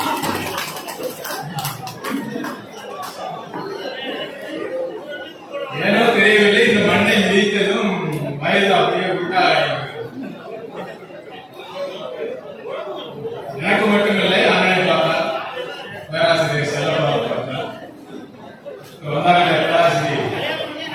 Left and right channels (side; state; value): both; identical; correlation 1.00